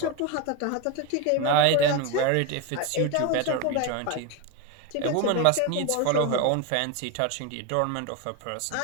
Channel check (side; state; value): both; different; correlation 0.02